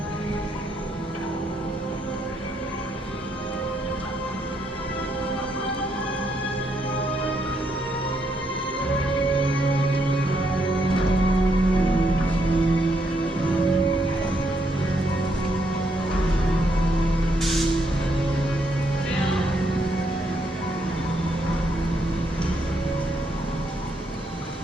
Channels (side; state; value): both; normal; correlation 0.76